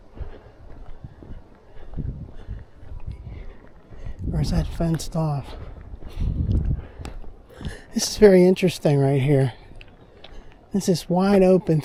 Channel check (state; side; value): identical; both; correlation 1.00